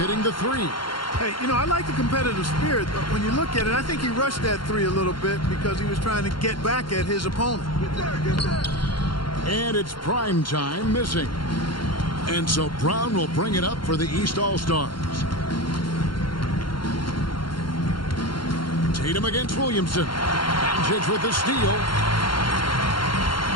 the three. Hey, you know, I like the competitive spirit, but when you look at it, I think he rushed that three a little bit because he was trying to get back at his opponent. And it's prime time missing. And so Brown will bring it up for the East All-Stars. Tatum against Williamson. Doncic with the steal.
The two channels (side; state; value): right; late; 0.72 ms